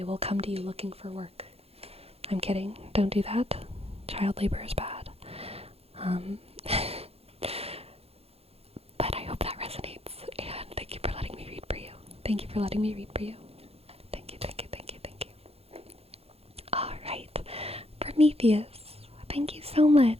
will come to you looking for work. I'm kidding. Don't do that. Child labor is bad. But I hope that resonates, and thank you for letting me read for you. Thank you for letting me read for you. Thank you, thank you, thank you, thank you. Alright, Prometheus, thank you so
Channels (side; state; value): left; late; 0.29 ms